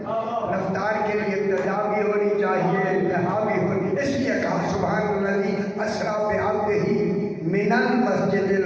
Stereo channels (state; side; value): identical; both; correlation 1.00